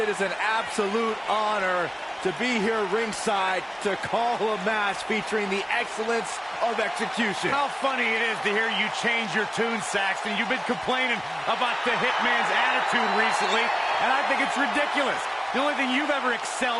is an absolute honor to be here ringside to call a match featuring the excellence of execution. How funny it is to hear you change your tune, Saxton. You've been complaining about the Hitman's attitude recently, and I think it's ridiculous. The only thing you've ever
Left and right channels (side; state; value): both; identical; correlation 1.00